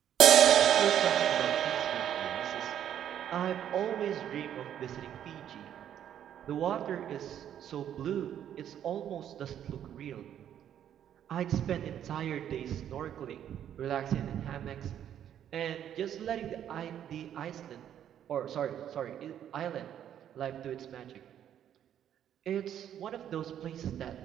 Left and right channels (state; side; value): quieter; left; 10.1 dB